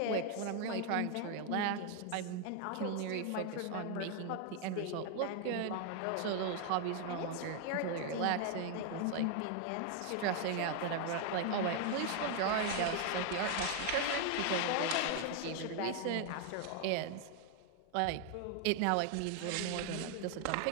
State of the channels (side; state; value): both; different; correlation 0.00